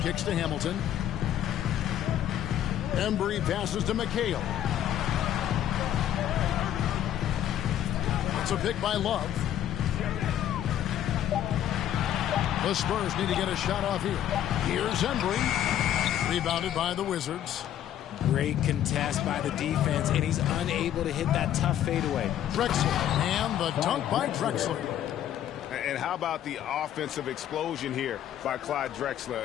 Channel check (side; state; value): right; quieter; 11.1 dB